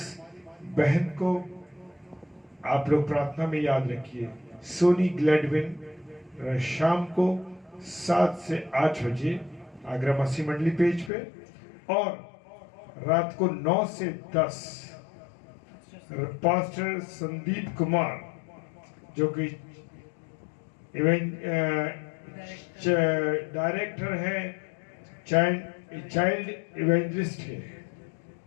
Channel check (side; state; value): right; drops out; at 11.1 s